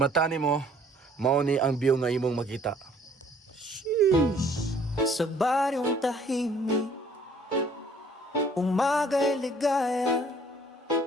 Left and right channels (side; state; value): both; normal; correlation 0.58